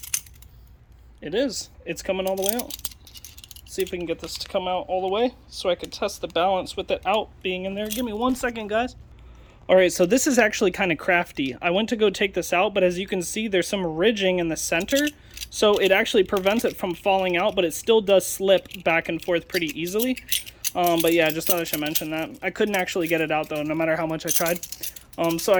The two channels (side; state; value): both; identical; correlation 1.00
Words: It is. It's coming all the way out. Let's see if we can get this to come out all the way so I can test the balance with it out being in there. Give me 1 second, guys. All right, so this is actually kind of crafty. I went to go take this out, but as you can see, there's some ridging in the center. So it actually prevents it from falling out, but it still does slip back and forth pretty easily. But yeah, just thought I should mention that. I couldn't actually get it out, though, no matter how much I tried. So